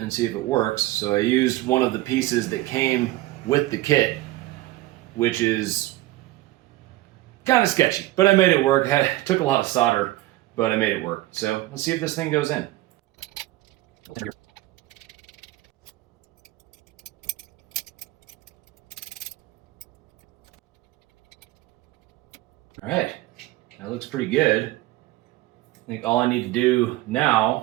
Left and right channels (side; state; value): left; quieter; 17.2 dB